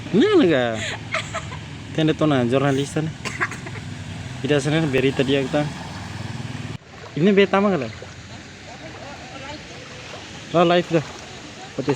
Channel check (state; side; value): identical; both; correlation 1.00